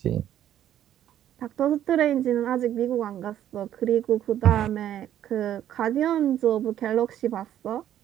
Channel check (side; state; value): left; quieter; 11.3 dB